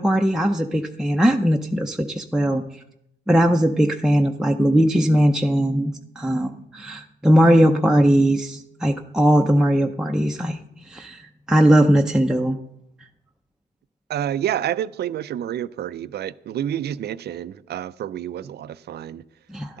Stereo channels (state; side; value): normal; both; correlation 0.90